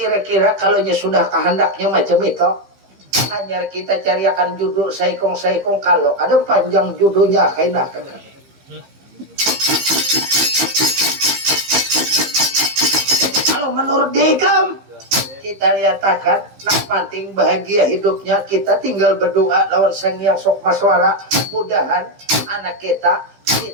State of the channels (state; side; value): late; left; 15 ms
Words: kalau sudah kehendaknya macam itu, hanya kita cariakan judul saikong kalau ada panjang judulnya kaina Kakang. Kalau menurut Dekam, kita lihatkan nak penting bahagia hidupnya, kita tinggal berdoa lawan Sang Hyang Sok Maswara, mudahan anak kita